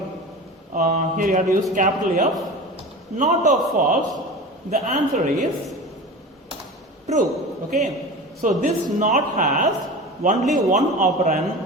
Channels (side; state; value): both; normal; correlation 0.32